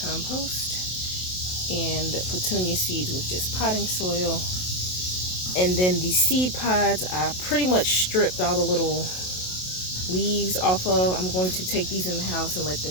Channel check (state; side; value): late; right; 27 ms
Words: and petunia seeds with just potting soil. And then the seed pods, I pretty much stripped all the little leaves off of. I'm going to take these in the house and let